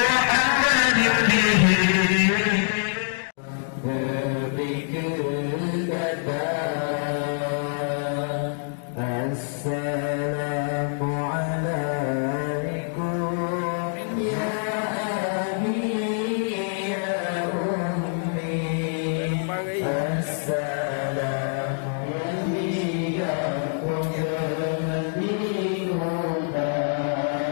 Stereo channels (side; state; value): right; silent; digital silence